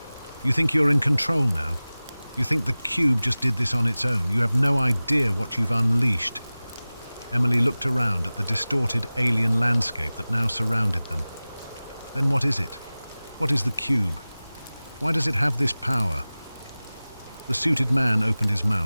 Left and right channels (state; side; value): inverted; both; correlation -0.98